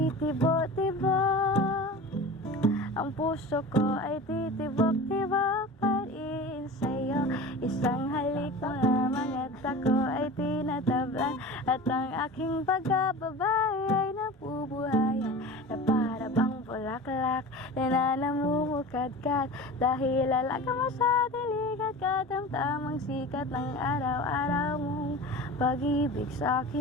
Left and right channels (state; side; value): normal; both; correlation 0.34